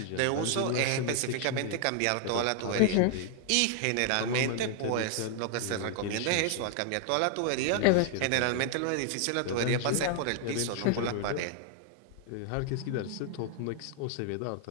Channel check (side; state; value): both; different; correlation 0.00